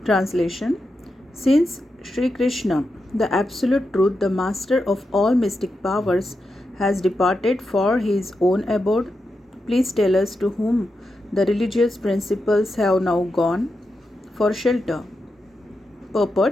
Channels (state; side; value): normal; both; correlation 0.87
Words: Translation. Since Sri Krishna, the Absolute Truth, the Master of all mystic powers, has departed for his own abode, please tell us to whom the religious principles have now gone for shelter.